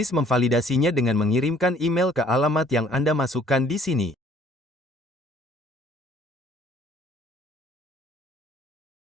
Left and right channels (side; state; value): both; normal; correlation 0.58